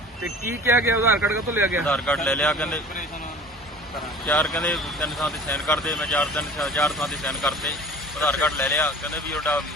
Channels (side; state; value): both; normal; correlation 0.43